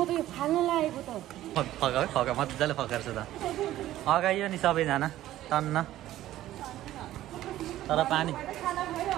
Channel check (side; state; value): left; quieter; 14.1 dB